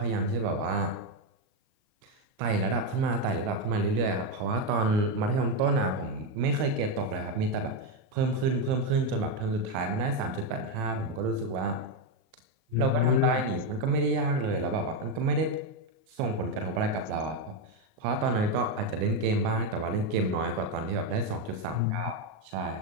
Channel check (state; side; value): late; left; 38 ms